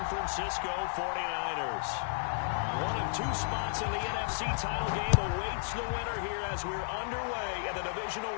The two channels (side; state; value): right; silent; digital silence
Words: Francisco 49ers. One of two spots in the NFC title game awaits the winner here as we're underway in the divisional